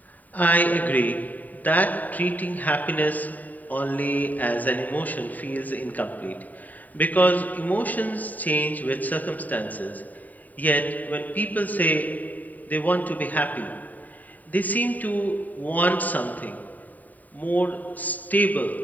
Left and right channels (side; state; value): right; late; 0.080 ms